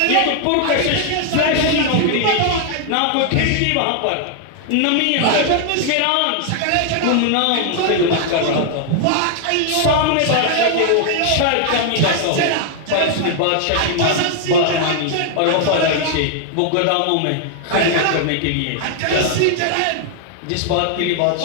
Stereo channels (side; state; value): both; different; correlation 0.00